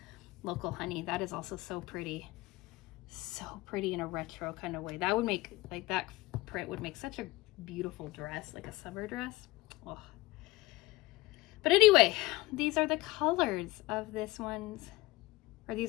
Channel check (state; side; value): quieter; right; 19.9 dB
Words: Local Honey. That is also so pretty. So pretty in a retro kind of way. That would make, like, that print would make such a beautiful dress, like a summer dress. Oh. But anyway, these are the colors of this one's, or